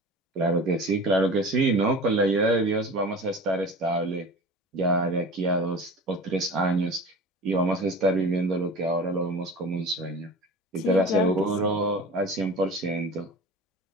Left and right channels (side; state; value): both; normal; correlation 0.36